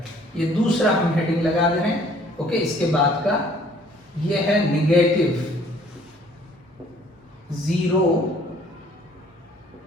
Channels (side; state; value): both; normal; correlation 0.57